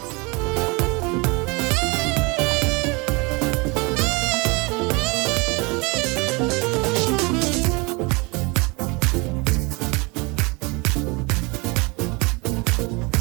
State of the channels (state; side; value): quieter; left; 27.3 dB